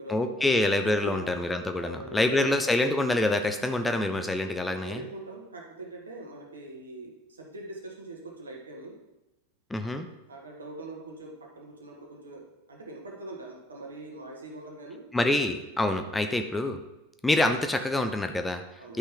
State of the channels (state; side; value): normal; both; correlation 0.74